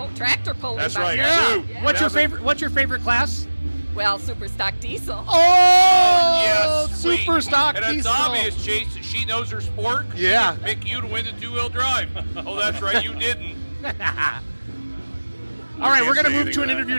tractor pulling. That's back right. there. Sue. Yeah. What's your favorite class? Well, super stock diesel. Oh, Yes, sweet. super stock And it's diesel. obvious, Chase, that she knows her sport. She Yeah. didn't pick you to win the two-wheel drive. Oh, that's right, you didn't. All right, we're going to say move anything to an to that. interview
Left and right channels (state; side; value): inverted; both; correlation -1.00